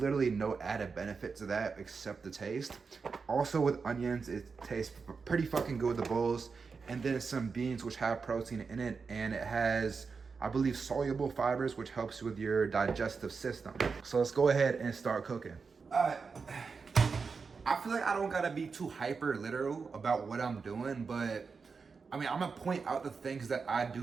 no added benefit to that except the taste. Also with onions, it tastes pretty fucking good with the bowls. And then some beans, which have protein in it, and it has, I believe, soluble fibers, which helps with your digestive system. So let's go ahead and start cooking. I feel like I don't gotta be too hyper literal about what I'm doing, but I mean, I'm gonna point out the things that I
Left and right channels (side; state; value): left; quieter; 5.1 dB